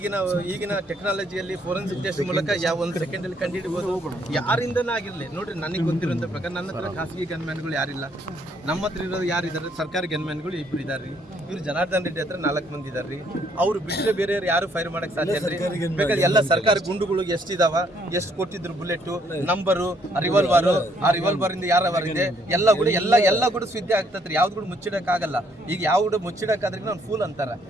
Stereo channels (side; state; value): both; normal; correlation 0.68